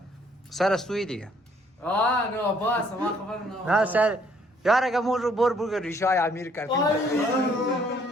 سر استوی دیگه نه باس ما خبر نه سر یار اگه مون رو بر ریشای امیر کردیم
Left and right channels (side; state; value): both; normal; correlation 0.64